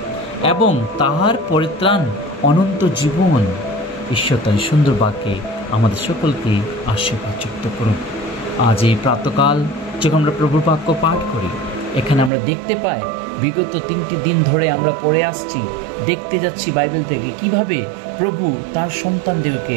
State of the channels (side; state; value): left; drops out; at 12.3 s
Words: এবং তাহার পরিত্রাণ অনন্ত জীবন। ঈশ্বর তার সুন্দর বাক্যে আমাদের সকলকে আশীর্বাদ যুক্ত করুন। আজ এই প্রাতকাল যখন আমরা প্রভুর বাক্য পাঠ করি, এখানে আমরা দেখতে পাই বিগত 3টি দিন ধরে আমরা পড়ে আসছি, দেখতে যাচ্ছি বাইবেল থেকে কিভাবে প্রভু তার সন্তানদিগকে,